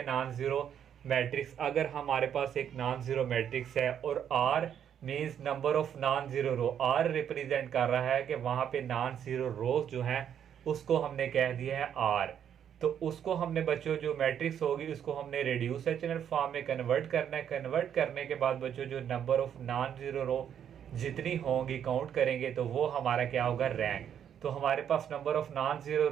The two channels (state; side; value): quieter; left; 9.0 dB